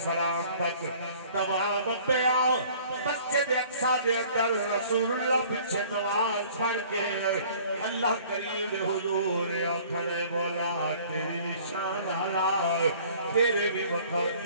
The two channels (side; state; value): both; inverted; correlation -0.52